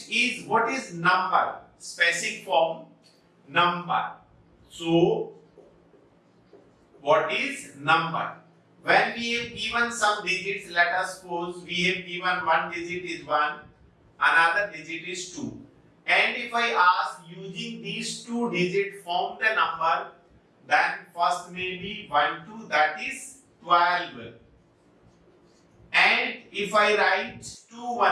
is, what is number? Specific form, number. So what is number? When we have given some digits, let us suppose we have given one digit is 1, another digit is 2. And if I ask using these two digits form the number, then first may be 1, 2, that is 12. And if I write 2,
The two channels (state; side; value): identical; both; correlation 1.00